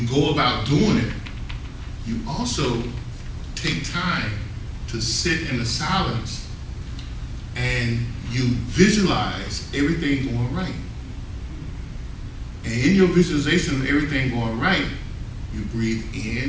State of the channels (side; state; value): both; identical; correlation 1.00